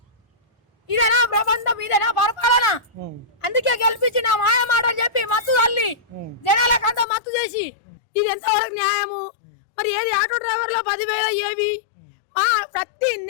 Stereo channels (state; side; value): drops out; right; at 7.1 s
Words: ఇదేనా ప్రబంధం? ఇదేనా పరిపాలన? అందుకే గెలిపించి నా మాయ మాటలు చెప్పి మత్తు తల్లి జనాలకంతా మత్తు చేసి ఇది ఎంతవరకు న్యాయము? మరి ఏది ఆటో డ్రైవర్లో 10,000 ఏవి ప్రతి